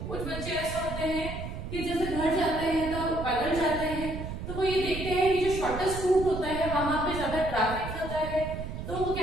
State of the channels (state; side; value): noise; right; rumble, 7 dB below the sound